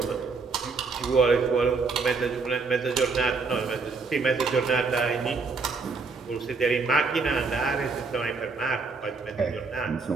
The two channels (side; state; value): left; quieter; 4.4 dB